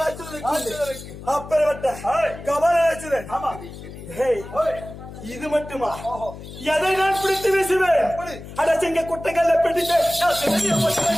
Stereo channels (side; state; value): left; noise; hum, 13 dB below the sound